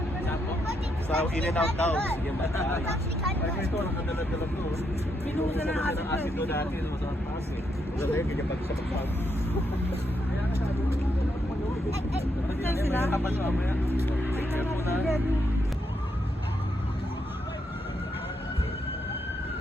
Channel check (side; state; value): both; normal; correlation 0.79